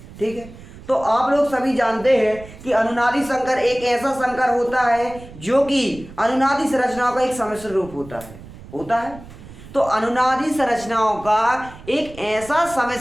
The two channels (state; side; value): noise; right; rumble, 17 dB below the sound